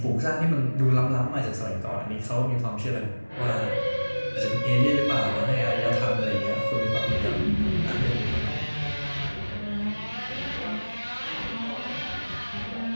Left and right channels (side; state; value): both; inverted; correlation -1.00